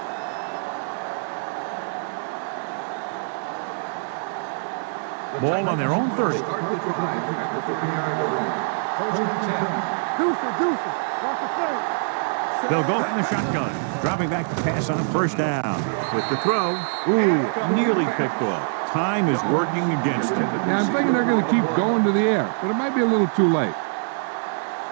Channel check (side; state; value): left; silent; digital silence